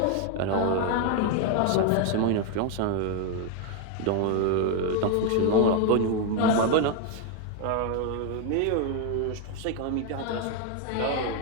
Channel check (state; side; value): different; both; correlation 0.01